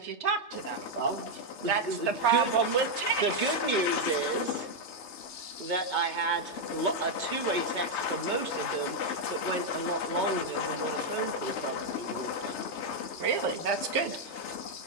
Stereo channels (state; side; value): late; right; 3.3 ms